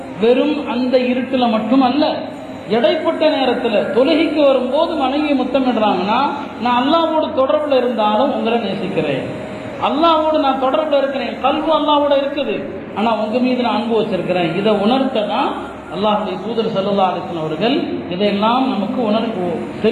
வெறும் அந்த இருட்டில் மட்டும் அல்ல. இடைப்பட்ட நேரத்தில் தொழுகைக்கு வரும்போது மனைவியை முத்தமிடுறாங்கன்னா, நான் அல்லாஹ்வோடு தொடர்பில் இருந்தாலும் உங்களை நேசிக்கிறேன், அல்லாஹ்வோடு நான் தொடர்பில் இருக்கிறேன், கல்வி அல்லாஹ்வோட இருக்குது, ஆனால் உங்க மீது நான் அன்பு வச்சிருக்கிறேன். இதை உணர்த்த தான் அல்லாஹ்வுடைய தூதர் ஸல்லல்லாஹு அலைஹி வஸல்லம் அவர்கள் இதையெல்லாம் நமக்கு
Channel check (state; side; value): identical; both; correlation 1.00